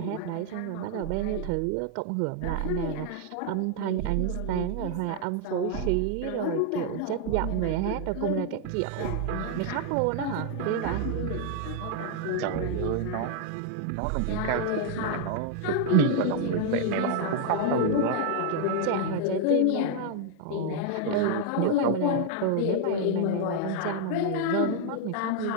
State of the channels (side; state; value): both; different; correlation 0.00